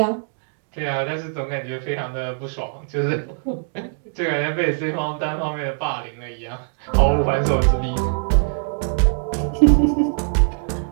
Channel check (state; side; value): silent; left; digital silence